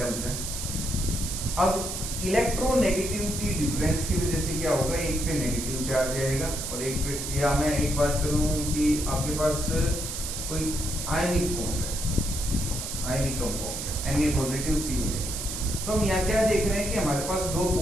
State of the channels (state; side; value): noise; right; hiss, 5 dB below the sound